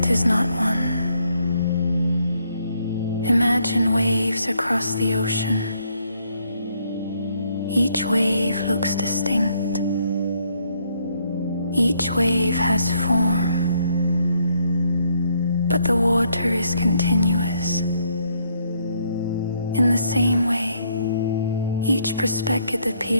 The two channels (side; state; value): both; inverted; correlation -0.71